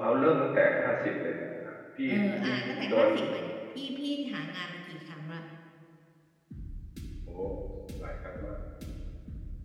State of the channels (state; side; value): identical; both; correlation 1.00